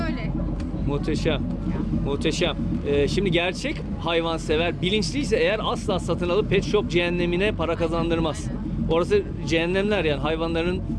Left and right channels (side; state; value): both; identical; correlation 1.00